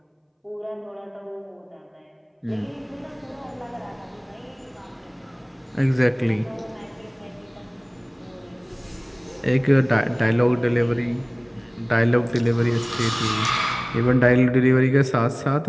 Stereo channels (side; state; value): both; identical; correlation 1.00